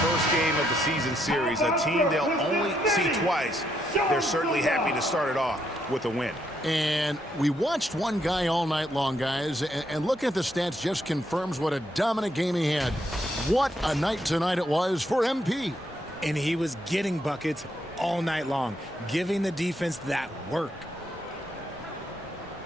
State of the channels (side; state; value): both; normal; correlation 0.76